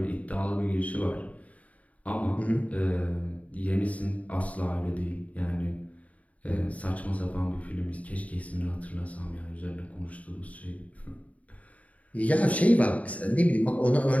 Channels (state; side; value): late; right; 0.069 ms